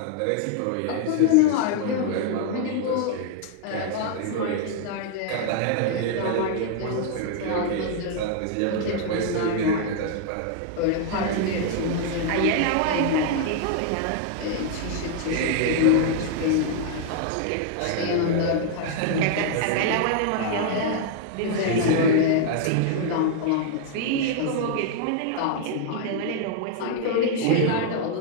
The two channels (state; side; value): different; both; correlation 0.00